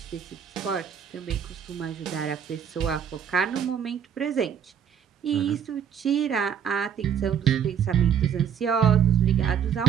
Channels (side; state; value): left; quieter; 8.2 dB